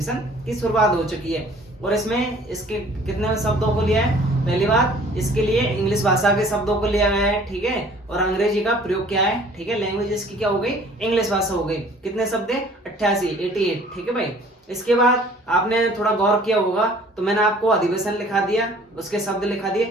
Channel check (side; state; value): both; normal; correlation 0.53